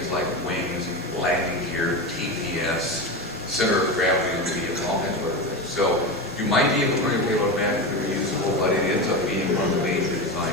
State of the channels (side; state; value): both; normal; correlation 0.20